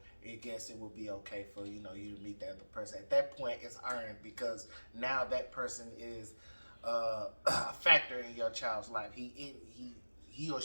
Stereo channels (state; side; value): inverted; both; correlation -1.00